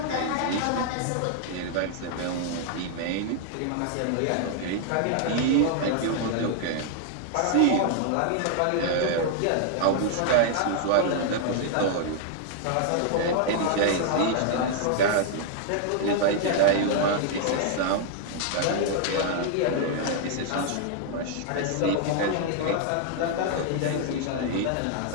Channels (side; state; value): both; different; correlation 0.00